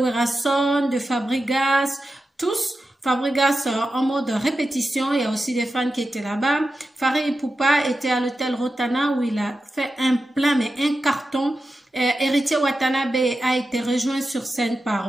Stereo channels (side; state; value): both; normal; correlation 0.91